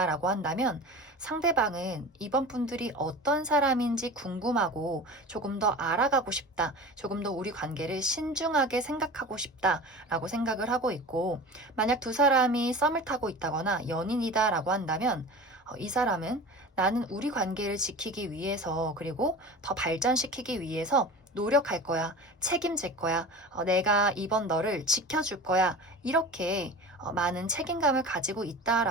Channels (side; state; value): both; normal; correlation 0.34